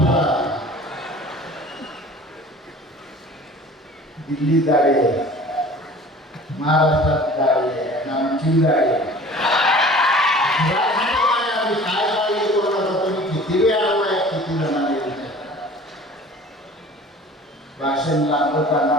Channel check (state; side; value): normal; both; correlation 0.45